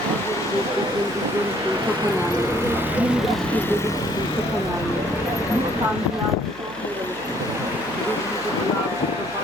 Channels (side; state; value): left; noise; hum, 19 dB below the sound